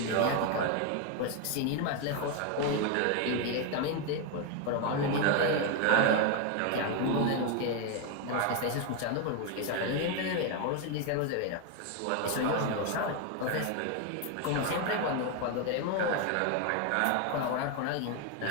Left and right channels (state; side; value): different; both; correlation 0.01